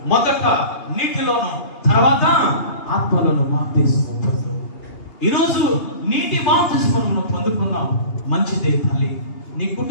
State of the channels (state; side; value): late; right; 2.8 ms